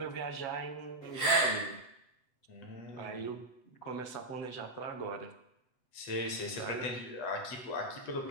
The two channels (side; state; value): right; late; 7.9 ms